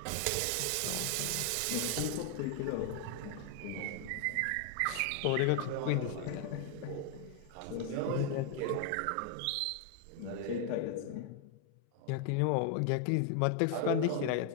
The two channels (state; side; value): different; both; correlation 0.00